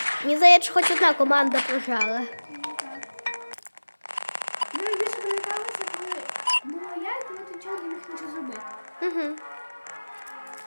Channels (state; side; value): inverted; both; correlation -1.00